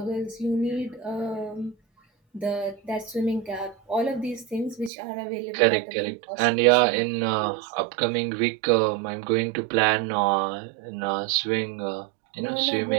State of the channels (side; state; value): left; drops out; at 4.9 s